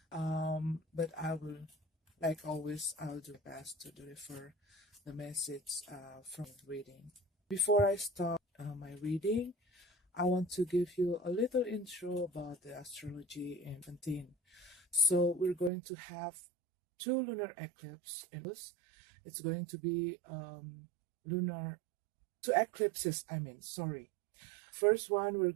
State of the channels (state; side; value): drops out; left; at 15.7 s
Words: But I will, like always, I'll do best to deliver the message from reading. Before I start my reading, I want to give you a little intro about the astrology in 17. So we're going to have two lunar eclipses in this. It's going to be two eclipses, sorry. First one, we're